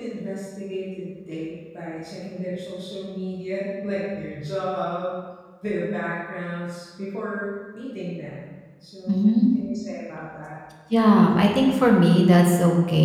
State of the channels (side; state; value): both; identical; correlation 1.00